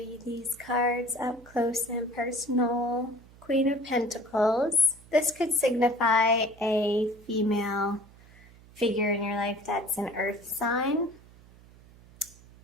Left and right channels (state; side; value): noise; right; hum, 24 dB below the sound